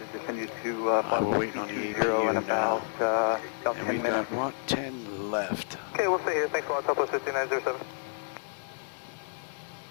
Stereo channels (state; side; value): silent; right; digital silence